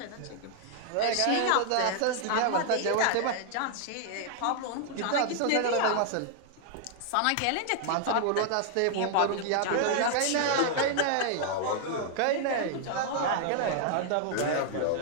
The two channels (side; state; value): both; different; correlation 0.00